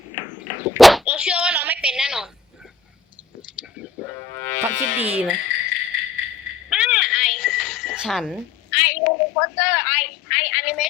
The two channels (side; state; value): right; quieter; 4.9 dB